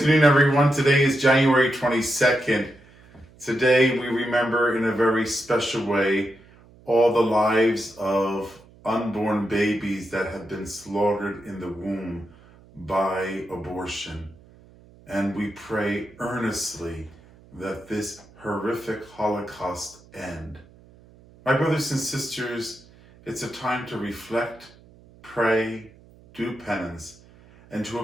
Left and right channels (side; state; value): right; noise; hum, 25 dB below the sound